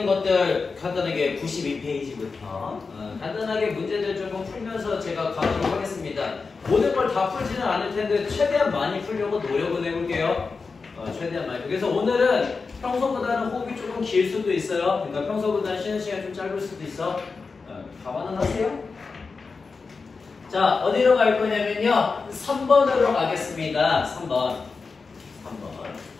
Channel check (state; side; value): quieter; right; 4.6 dB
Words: 것들 간단하게 92페이지부터 간단하게 문제들 조금 풀면서 제가 가도록 하겠습니다. 모든 걸 다 풀지는 않을 텐데 최대한 많이 풀려고 노력을 해볼게요. 최대한 많이. 그래서 오늘은 평소보다는 호흡이 조금 길 수도 있어요. 그러니까 평소보다는 쉬는 시간이 좀 짧을 수도 있어. 감안은 하세요. 자, 어디로 갈 거냐면요. 3번으로 가겠습니다. 3번.